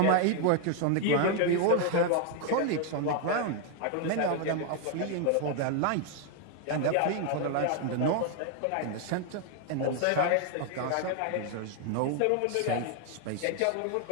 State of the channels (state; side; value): different; both; correlation 0.00